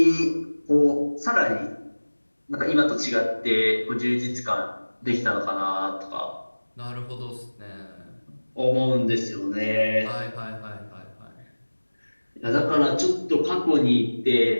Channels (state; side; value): inverted; both; correlation -1.00